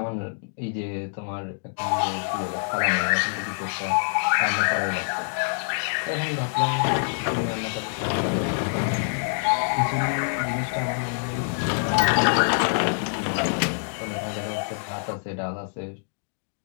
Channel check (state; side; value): silent; right; digital silence